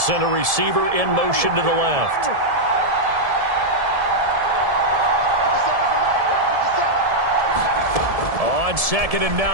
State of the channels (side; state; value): left; late; 1.7 ms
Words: a receiver in motion to the left. On 2nd and